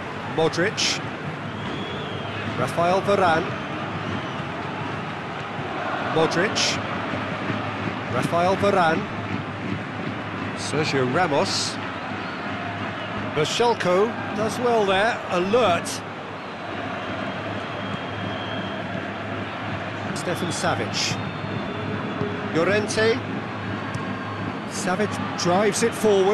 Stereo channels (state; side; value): identical; both; correlation 1.00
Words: Modric. Rafael Varane. Modric. Rafael Varane. Sergio Ramos. Berchelko does well there, alert. Stefan Savic. Llorente. Savic drives it